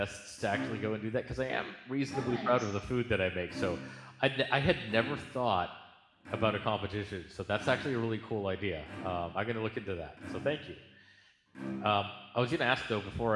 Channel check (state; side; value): identical; both; correlation 1.00